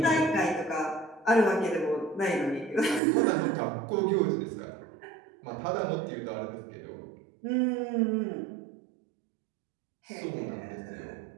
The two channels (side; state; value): left; drops out; at 3.0 s